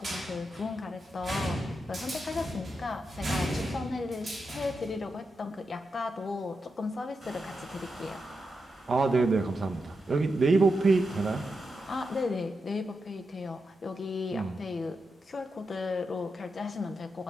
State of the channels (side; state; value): both; normal; correlation 0.87